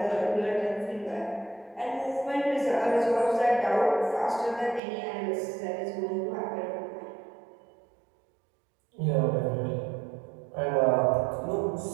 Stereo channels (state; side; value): drops out; left; at 4.8 s